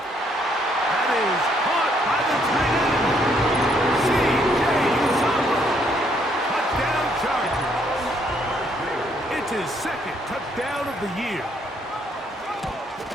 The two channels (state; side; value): normal; both; correlation 0.69